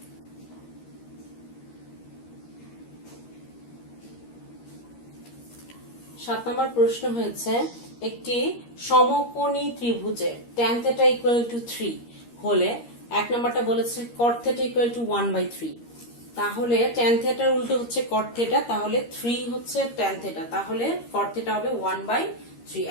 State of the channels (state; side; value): late; right; 13 ms